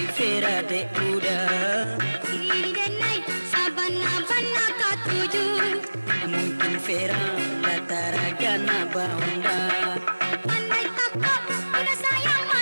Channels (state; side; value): inverted; both; correlation -1.00